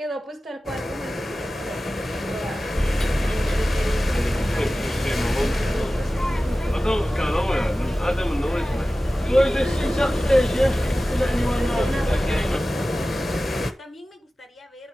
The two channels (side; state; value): both; normal; correlation 0.96